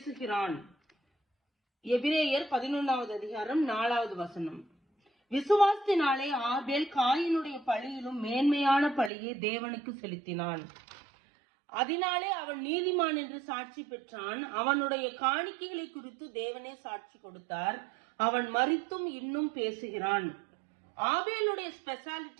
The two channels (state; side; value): drops out; left; at 9.1 s